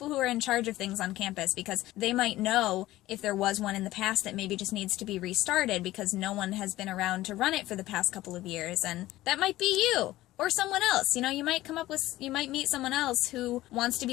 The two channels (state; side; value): quieter; right; 16.2 dB